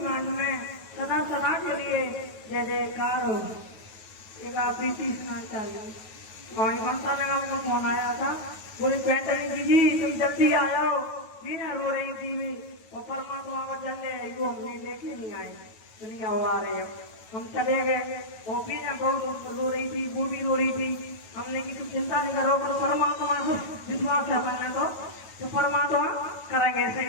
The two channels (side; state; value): right; late; 9.3 ms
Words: में सदा सदा के लिए जय जयकार हो। एक आप प्रीति सुना चाहिए। वहीं ममता नगर में फोन आया था, बोले पैंतनी जी तुम जल्दी आ जाओ, बिना रो रही थी मैं और परमात्मा को चले वो हमने लेके नहीं आए, दुनिया वो आ रहे हम चले गए। वो भी ना बहुत रो रही थी, वो भी रो रही थी। हमने की तुम चिंता नहीं करो, पर परमात्मा को विश्वास है मैंने तो परमात्मा करेंगे ऐसे,